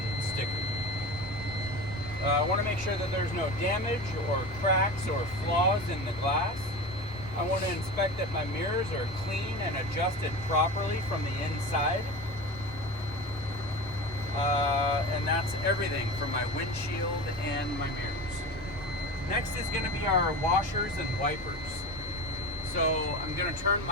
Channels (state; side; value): normal; both; correlation 0.29